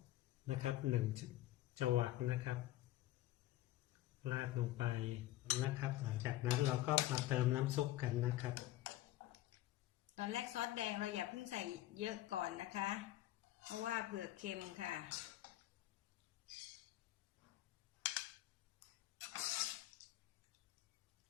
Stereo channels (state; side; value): quieter; right; 15.2 dB